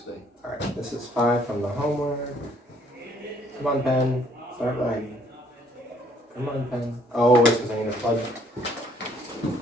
All right, this is 5 from the homework. Come on, pen. Start writing. Come on, pen. Oh, it's because I need to plug.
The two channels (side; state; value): both; normal; correlation 0.64